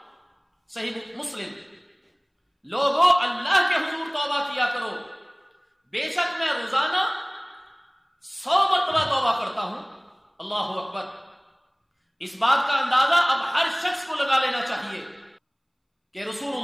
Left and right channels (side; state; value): both; identical; correlation 1.00